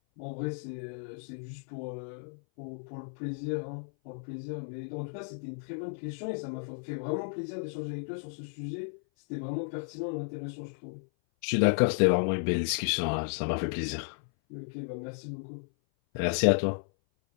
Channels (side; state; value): right; silent; 56 dB below the other